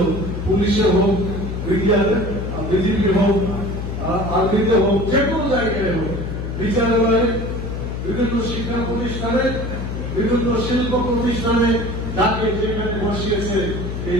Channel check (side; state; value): left; noise; hum, 5 dB below the sound